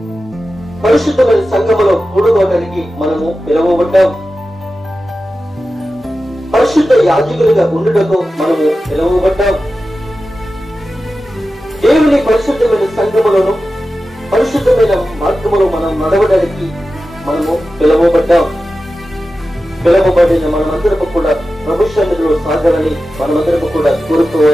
పరిశుద్ధమైన సంఘములో కూడుకోవడానికి మనము పిలువబడ్డాం. పరిశుద్ధ యాజకులుగా ఉండుటకు మనము పిలువబడ్డాం. దేవుని పరిశుద్ధమైన సంఘములను పరిశుద్ధమైన మార్గములో మనం నడవడానికి మనము పిలువబడ్డాం. పిలువబడిన మనమందరము కూడా ప్రభు సన్నిధిలో సాగాలని మనమందరము కూడా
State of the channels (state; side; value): normal; both; correlation 0.93